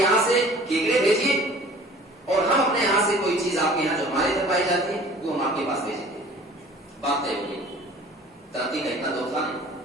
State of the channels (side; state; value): both; normal; correlation 0.48